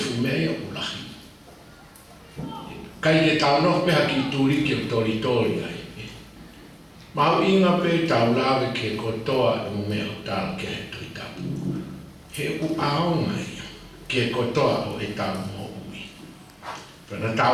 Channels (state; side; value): identical; both; correlation 1.00